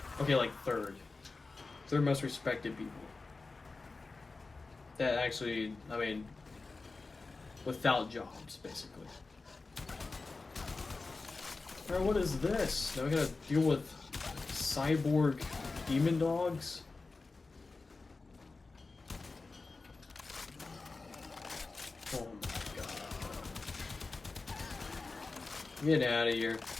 third most respected people. That actually, I mean, without jobs, basically. Alright, what is this? Now we gotta deal with cyborg demon dogs? Oh my god. Get out of here.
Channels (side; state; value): right; quieter; 3.8 dB